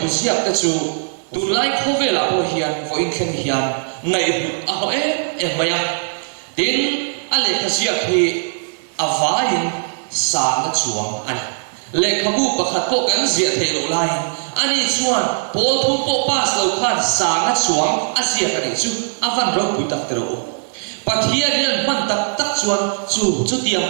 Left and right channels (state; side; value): silent; left; digital silence